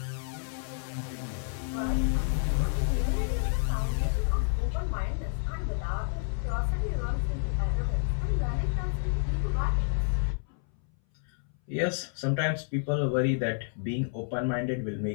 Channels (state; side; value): silent; right; 58 dB below the other